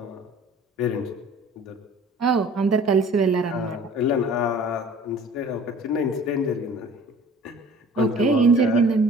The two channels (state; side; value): normal; both; correlation 0.48